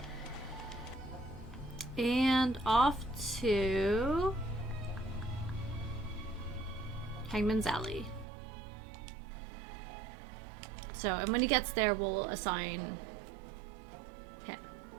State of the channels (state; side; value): drops out; left; at 8.2 s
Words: And off to Hangman's Alley. So, and when he gets there, we'll assign him.